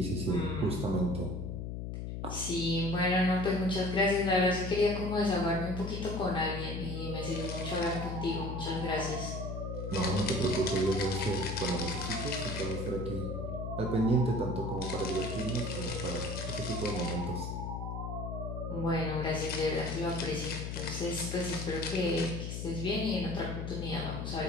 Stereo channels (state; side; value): noise; left; hum, 5 dB below the sound